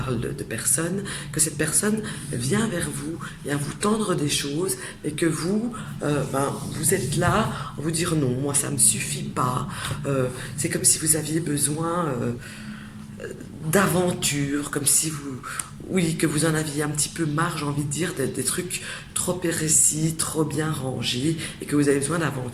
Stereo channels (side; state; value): both; identical; correlation 1.00